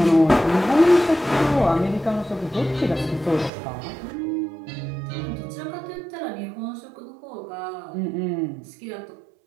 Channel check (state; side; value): drops out; left; at 3.5 s